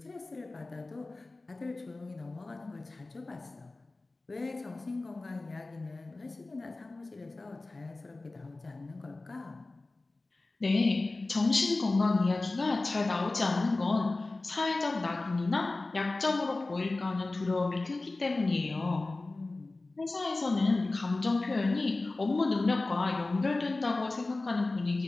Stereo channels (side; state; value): right; quieter; 3.2 dB